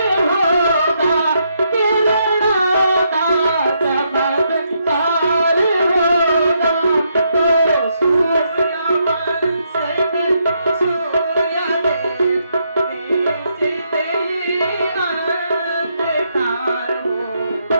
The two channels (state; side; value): inverted; both; correlation -0.77